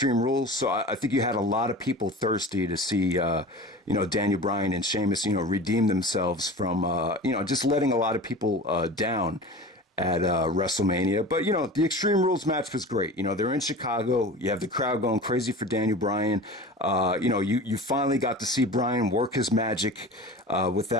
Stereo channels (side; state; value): both; normal; correlation 0.36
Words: Rules. So I think you had a lot of people thirsty to see Daniel Bryan and Sheamus redeem themselves from just letting a lot of people down at WrestleMania. But, the Extreme Rules match was great. They're in Chicago. You have the crowd going crazy for Daniel Bryan. You finally got to see Bryan work his magic